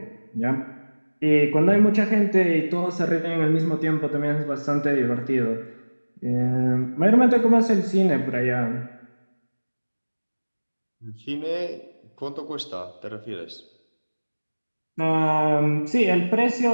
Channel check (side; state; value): both; inverted; correlation -1.00